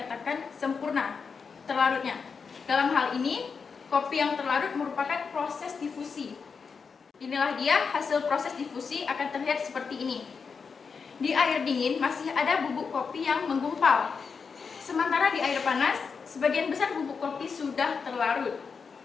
sempurna terlarutnya. Dalam hal ini, kopi yang terlarut merupakan proses difusi. Inilah dia hasil proses difusi akan terlihat seperti ini. Di air dingin masih ada bubuk kopi yang menggumpal. Sementara di air panas, sebagian besar bubuk kopi sudah terlarut.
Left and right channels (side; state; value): right; quieter; 5.5 dB